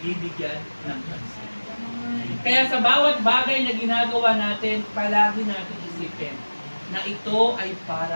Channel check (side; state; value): both; inverted; correlation -1.00